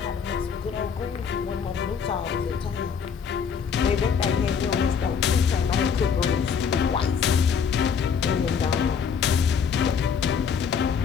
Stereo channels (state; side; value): quieter; right; 6.7 dB